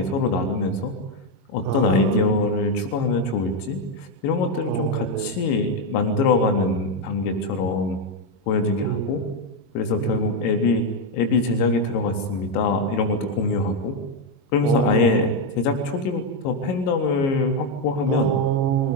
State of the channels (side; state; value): right; late; 22 ms